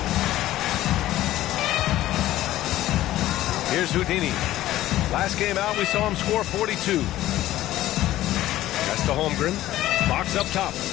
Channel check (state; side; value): quieter; right; 14.7 dB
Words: Here's Houdini. Last game out, we saw him score 42. That's to Holmgren. Fox up top.